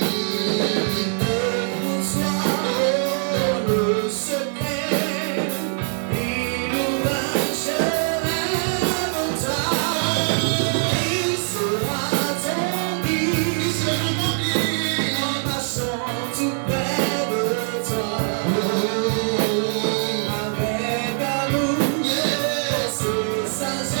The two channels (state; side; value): silent; left; digital silence